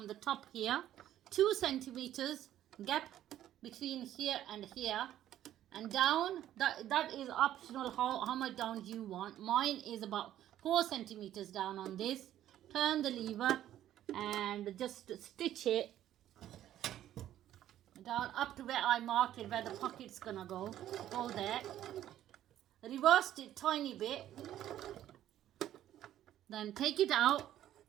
the top here, 2 centimeters gap between here and here, and down. That is optional how much down you want. Mine is about 4 centimeters down on this. Turn the lever and just stitch it down up to where I marked it, where the pocket's gonna go there. Reversed it tiny bit, then take it out,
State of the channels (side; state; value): left; quieter; 12.2 dB